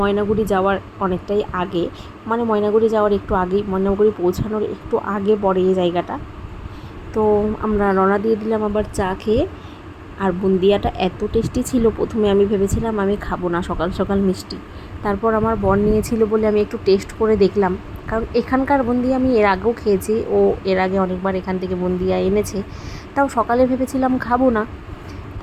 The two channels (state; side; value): identical; both; correlation 1.00